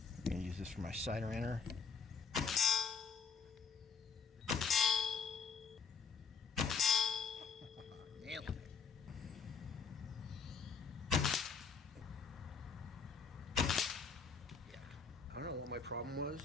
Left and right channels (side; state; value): right; quieter; 5.7 dB